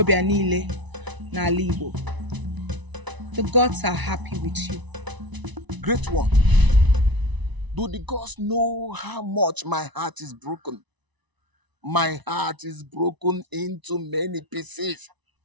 niile n'ala Igbo. The gods are happy with you. Great one, do the gods know how much my heart is broken? My heart is broken into many pieces.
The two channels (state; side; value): late; left; 1.0 ms